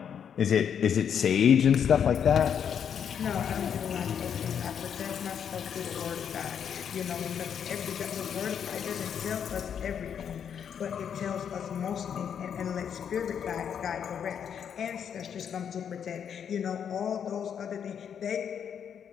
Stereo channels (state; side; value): quieter; right; 8.1 dB